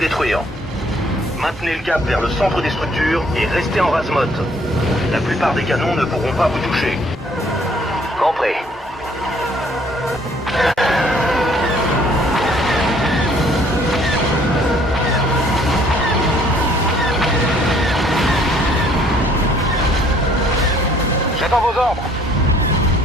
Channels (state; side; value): normal; both; correlation 0.61